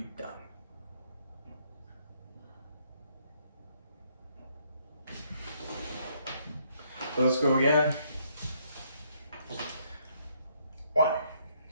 done. So let's go again. 1,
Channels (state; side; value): inverted; both; correlation -0.70